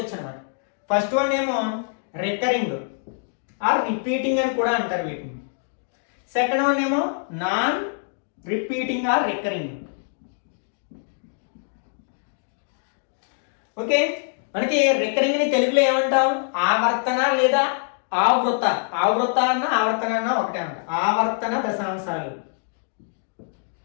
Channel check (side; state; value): right; silent; digital silence